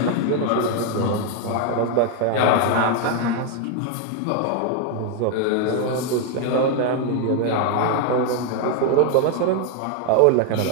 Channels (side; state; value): both; different; correlation 0.00